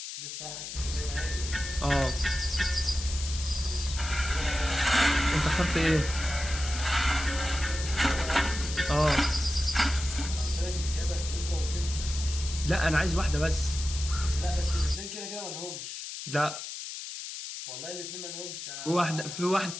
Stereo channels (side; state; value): left; noise; hiss, 8 dB below the sound